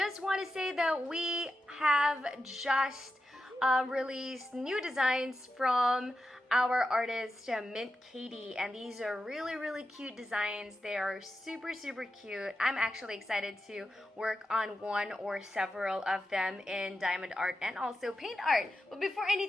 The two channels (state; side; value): normal; both; correlation 0.89